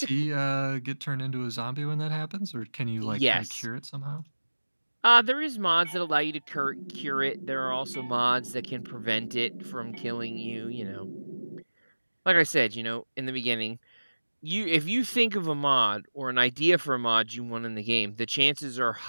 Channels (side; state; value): both; inverted; correlation -1.00